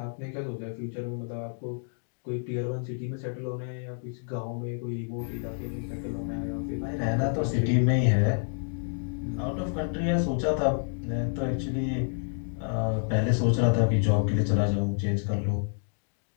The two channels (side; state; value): right; silent; digital silence